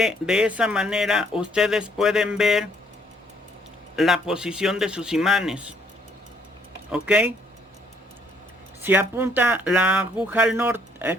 de esa manera ustedes pueden ver la posición de sus imanes. ¿Ok? Si apunta la aguja al norte,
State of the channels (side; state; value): both; normal; correlation 0.66